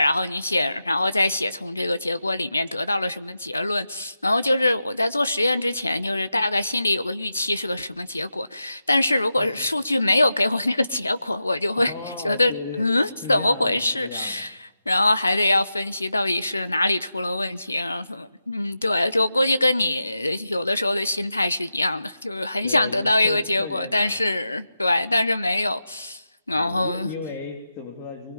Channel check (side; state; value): both; inverted; correlation -0.89